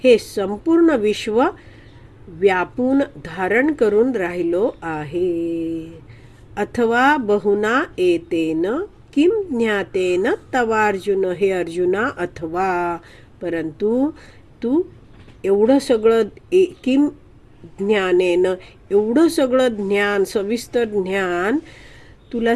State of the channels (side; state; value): both; identical; correlation 1.00